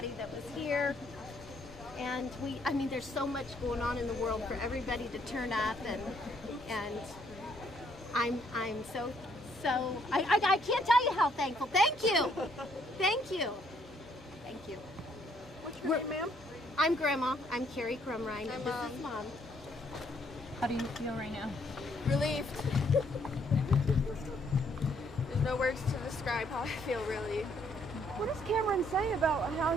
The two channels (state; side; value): normal; both; correlation 0.68